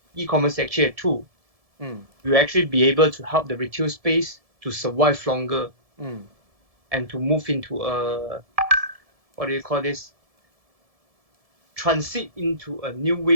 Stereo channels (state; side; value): late; left; 1.7 ms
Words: e-commerce is actually a tool. Will actually be able to help the retail space to survive longer and to move into a, what do you call this? Transit into a new